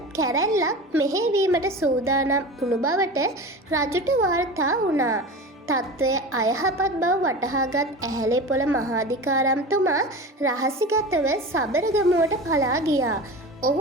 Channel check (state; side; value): normal; both; correlation 0.31